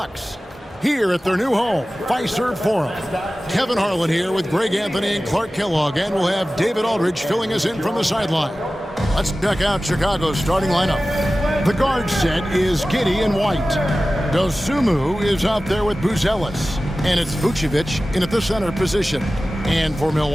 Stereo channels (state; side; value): normal; both; correlation 0.96